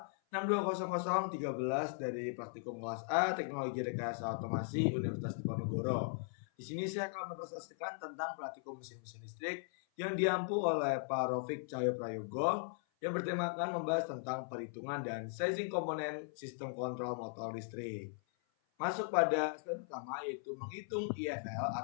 dari Praktikum Kelas A Teknologi Rekayasa Otomasi Universitas Diponegoro. Di sini saya akan mempresentasikan tentang praktikum mesin-mesin listrik yang diampu oleh Pak Rofik Cahyo Prayogo yang bertemakan membahas tentang perhitungan dan sizing komponen sistem kontrol motor listrik. Masuk pada step pertama yaitu menghitung IFL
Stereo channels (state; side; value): silent; right; 52 dB below the other